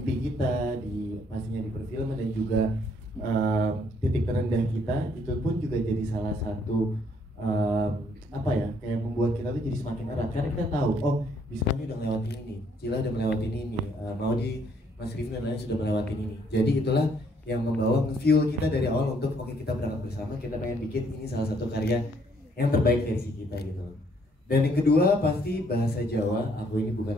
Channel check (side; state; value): both; normal; correlation 0.67